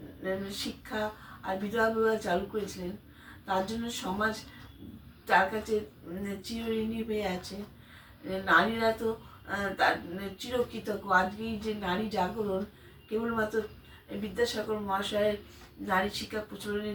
শিক্ষা আর বিধবা বিবাহ চালু করেছিলেন, তার জন্য সমাজ তার কাছে চিরঋণী হয়ে আছে। নারীরা তো তার চিরকৃতজ্ঞ। আজকেই যে নারী জাগরণ কেবলমাত্র বিদ্যাসাগর মহাশয়ের নারী শিক্ষা প্রচলনের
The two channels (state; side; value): identical; both; correlation 1.00